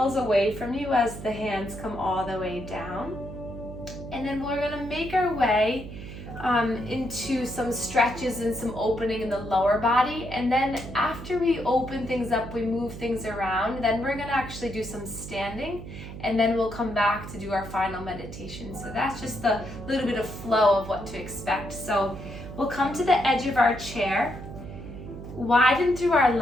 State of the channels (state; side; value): noise; right; hum, 11 dB below the sound